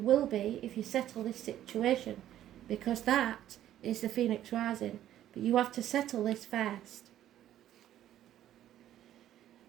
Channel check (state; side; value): quieter; left; 12.1 dB